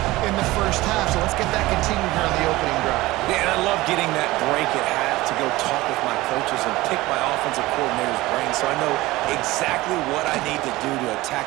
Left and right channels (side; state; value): left; quieter; 19.0 dB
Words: in the first half, so let's get that continued here on the opening drive. Yeah, and I love getting that break at half to go talk with my coaches and pick my offensive coordinator's brain so I know exactly what I need to do to